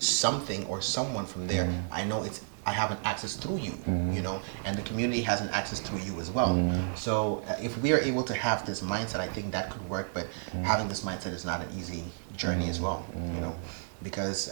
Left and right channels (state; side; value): silent; left; digital silence